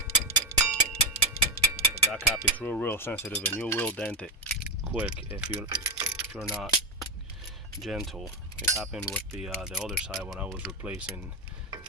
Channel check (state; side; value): normal; both; correlation 0.11